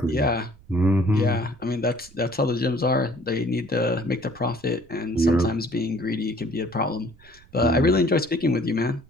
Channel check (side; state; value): right; noise; rumble, 26 dB below the sound